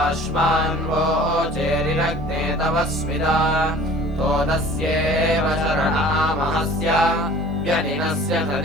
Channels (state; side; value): normal; both; correlation 0.47